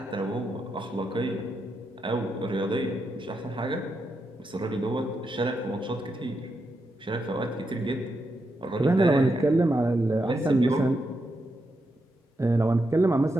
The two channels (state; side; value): normal; both; correlation 0.84